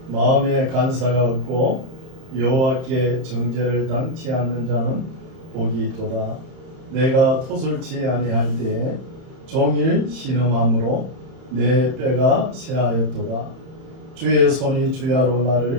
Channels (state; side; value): late; left; 31 ms